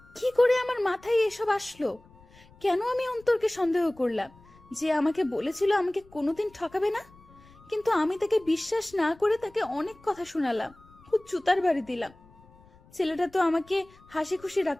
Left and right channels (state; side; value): noise; left; rumble, 26 dB below the sound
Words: কি করে আমার মাথায় এসব আসলো? কেন আমি অন্তরকে সন্দেহ করলাম? যে আমাকে বলেছিল আমাকে কোনোদিন ঠকাবে না, কিন্তু আমি তাকে বিশ্বাস না করে তাকে অনেক কথা শোনালাম, খুব জুতার বাড়ি দিলাম। ছেলেটা তো আমাকে হাসি খুশি